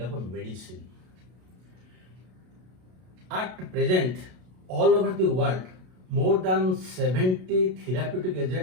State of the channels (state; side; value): late; left; 32 ms